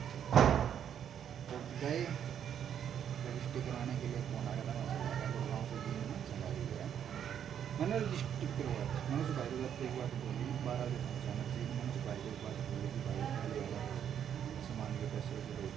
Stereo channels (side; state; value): left; quieter; 9.0 dB